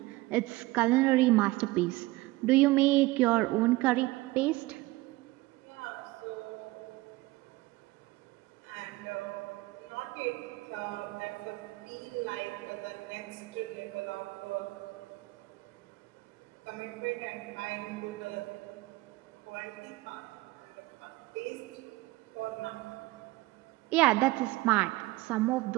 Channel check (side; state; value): left; quieter; 20.0 dB